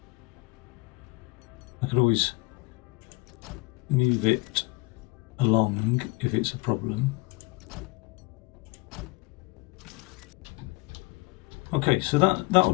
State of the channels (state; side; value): quieter; right; 23.4 dB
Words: I could always move it along if it's a problem. Okay, so that'll